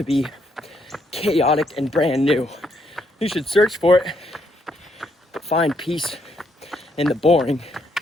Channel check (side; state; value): both; normal; correlation 0.74